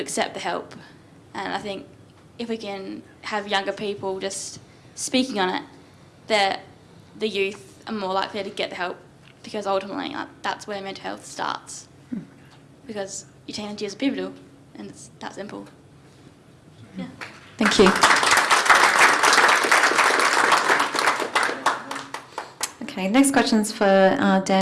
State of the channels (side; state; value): both; identical; correlation 1.00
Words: accept the help. And I think if we can have younger people just speaking on it, that the youth are more likely to get the help, because ultimately that's where mental health starts. Because your teenage years are pivotal, and it's that simple. Yeah. Thank you. Okay, next question's for